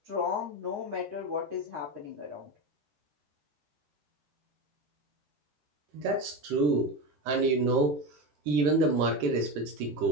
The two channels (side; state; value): left; late; 13 ms